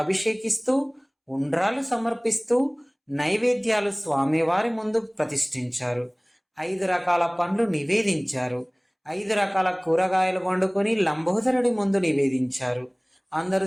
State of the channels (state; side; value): identical; both; correlation 1.00